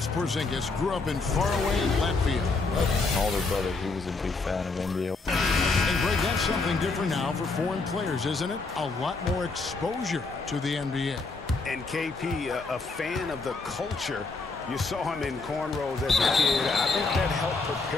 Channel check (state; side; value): quieter; right; 3.9 dB